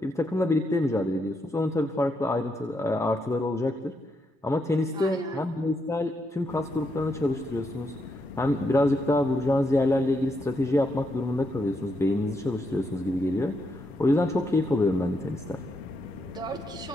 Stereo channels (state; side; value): normal; both; correlation 0.80